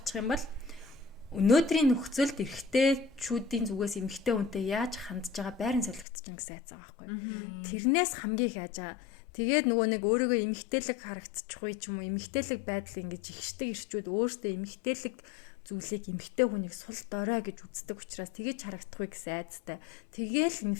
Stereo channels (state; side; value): drops out; right; at 6.1 s